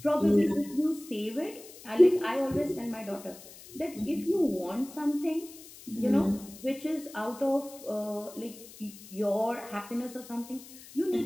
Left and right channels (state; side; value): noise; left; hiss, 18 dB below the sound